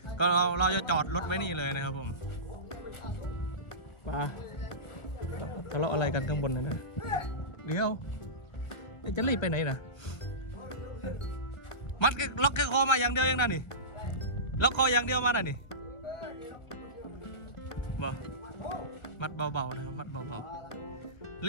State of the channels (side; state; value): right; late; 1.3 ms